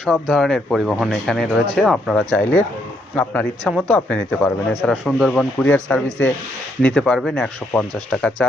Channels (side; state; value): both; normal; correlation 0.74